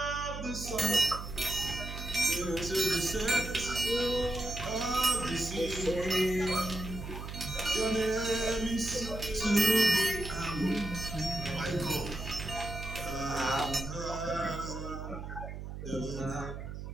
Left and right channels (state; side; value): noise; right; hum, 8 dB below the sound